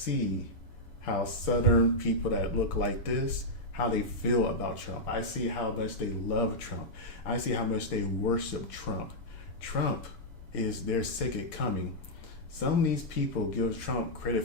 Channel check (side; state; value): right; late; 7.0 ms